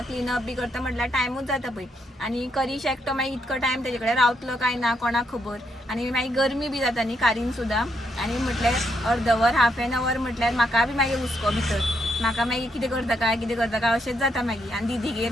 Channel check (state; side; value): normal; both; correlation 0.77